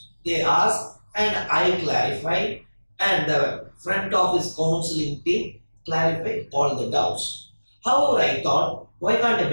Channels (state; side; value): inverted; both; correlation -1.00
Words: They ask and I clarify, and the front office counseling team clarify all the doubts. However, I thought, why can't I